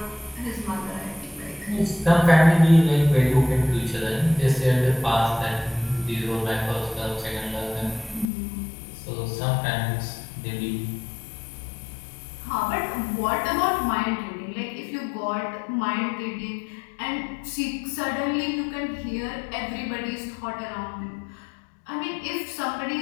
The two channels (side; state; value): right; drops out; at 8.2 s